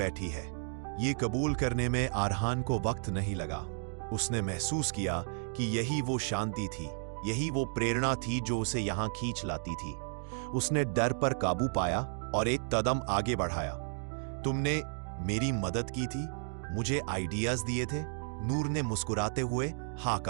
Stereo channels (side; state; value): left; silent; 56 dB below the other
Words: है। ये कबूल करने में आरहान को वक्त नहीं लगा। उसने महसूस किया कि यही वो शांति थी, यही वो प्रेरणा थी जो उसे यहां खींच लाती थी। उसने डर पर काबू पाया और एक कदम आगे बढ़ाया। तुमने मेरी मदद की थी, मुझे आइडियाज दिए थे। नूर ने मुस्कुराते हुए हाँ